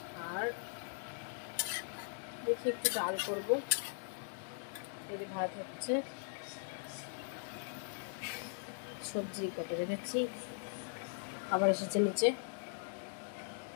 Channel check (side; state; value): right; silent; digital silence